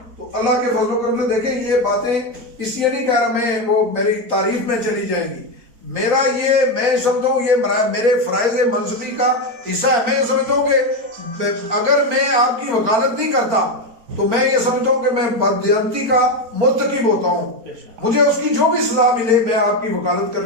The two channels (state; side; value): late; left; 4.4 ms